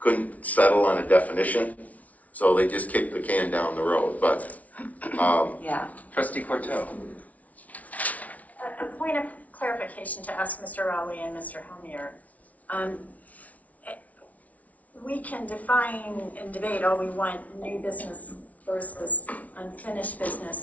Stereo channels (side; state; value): right; late; 0.070 ms